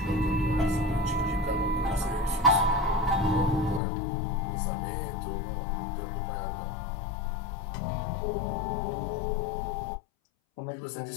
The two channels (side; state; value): right; drops out; at 3.8 s